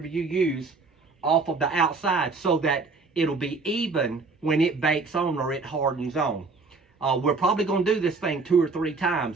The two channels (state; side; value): quieter; left; 4.1 dB